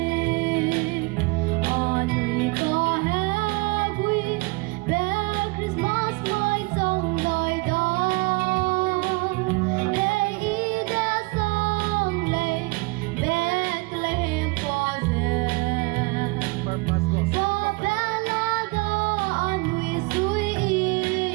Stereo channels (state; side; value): quieter; left; 26.3 dB